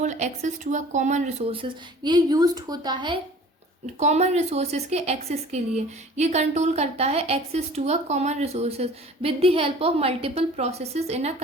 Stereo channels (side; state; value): both; normal; correlation 0.46